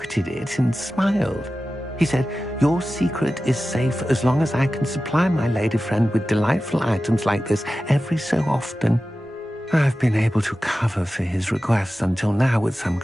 it, and smiled. He said, "Your secret is safe as long as I can supply my lady friend with delightful items like this every so often." I've been able to cover for his requests until now with some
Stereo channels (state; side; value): normal; both; correlation 0.94